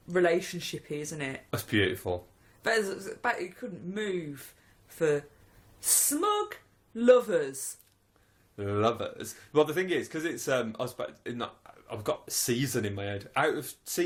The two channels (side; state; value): both; identical; correlation 1.00